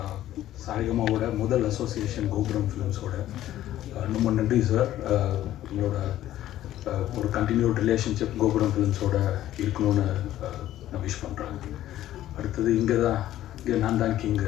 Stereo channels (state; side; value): quieter; right; 13.3 dB